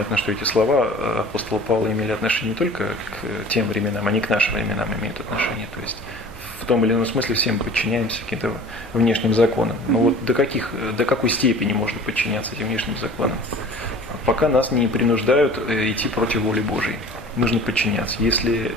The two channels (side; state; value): left; noise; hum, 24 dB below the sound